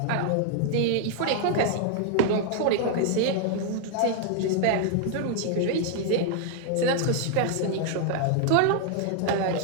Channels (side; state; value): both; different; correlation 0.00